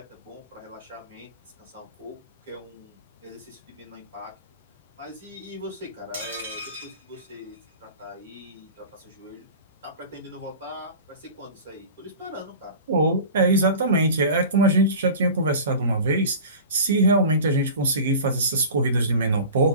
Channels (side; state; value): both; inverted; correlation -0.36